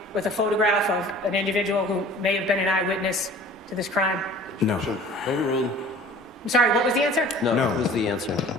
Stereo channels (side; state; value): both; normal; correlation 0.46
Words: with a photograph of an individual who may have been an eyewitness to this crime? No. Overruled. I'm sorry, what was the answer? No, No. that was the answer.